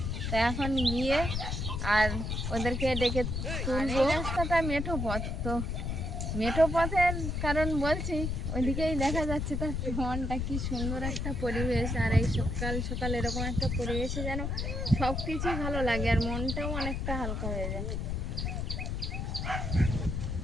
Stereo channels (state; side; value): noise; left; rumble, 2 dB below the sound